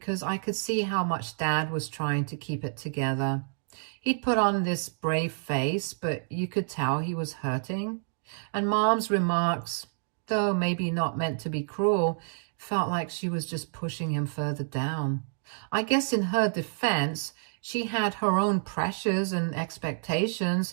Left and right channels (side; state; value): left; silent; digital silence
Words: I could see how much Dad was trying to keep it together. He'd put on this brave face, but you could tell he was hurting. And Mom's remarks, though maybe not meant to be cruel, felt like she was just pushing him further down. I guess in her defense, she had her own pressures and